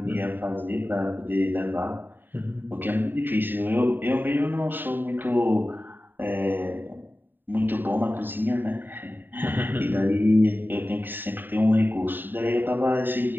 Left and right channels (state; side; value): late; left; 0.092 ms